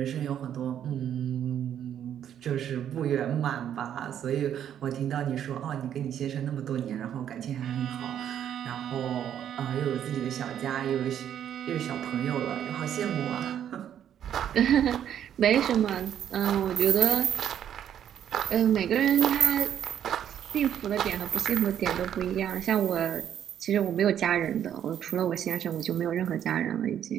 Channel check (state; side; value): quieter; left; 9.8 dB